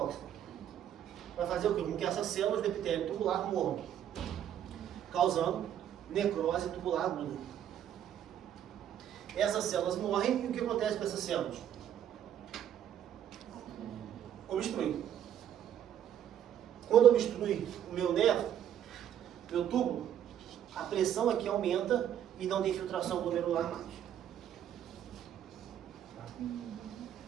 Vai fazer o quê? Com que essas células do epitélio tubular morram, causando necrose tubular aguda. Essas células morrem e o que acontece com essas células? Obstrui. Quando obstrui o meu nervo, meu túbulo, a pressão aqui aumenta e não tem filtração glomerular mais.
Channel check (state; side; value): quieter; left; 10.1 dB